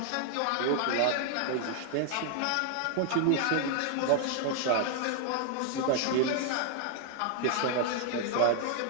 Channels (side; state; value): both; different; correlation 0.00